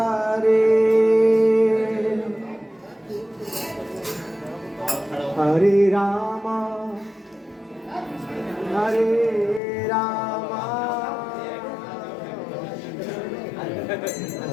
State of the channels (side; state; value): right; drops out; at 9.6 s